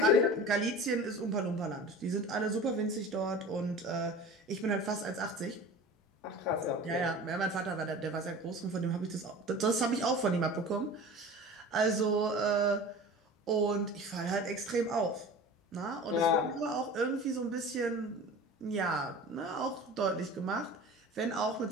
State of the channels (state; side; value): normal; both; correlation 0.38